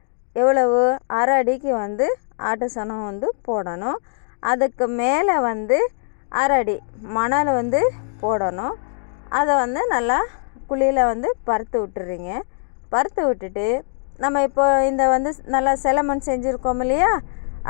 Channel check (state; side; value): silent; right; 65 dB below the other